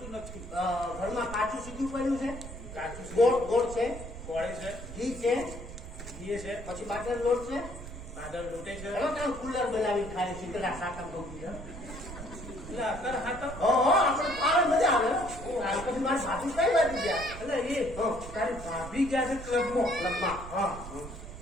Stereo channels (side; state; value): right; noise; rumble, 11 dB below the sound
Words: નથી. ઘરમાં કાચું સીધું પડ્યું છે, કાચું ગોળ ગોળ છે, ગોળે છે, ઘી છે, ઘીએ છે, પછી બાજર લોટ છે. બાદળ લૂંટે છે. ચલો ત્યાં કુલર બનાવી ખાય શીતળા સાકમ ભોગવી છે. એટલે અત્યારે હા તો આપણે ખાવા મજા આવે. હાલ પછી મારી સાસુ કઈ બાજુ ગયા? એટલે એ તારી ભાભી ગયા છે ક્લબમાં. ક્લબમાં. હા,